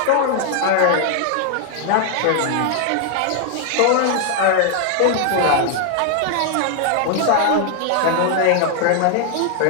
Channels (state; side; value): different; both; correlation 0.00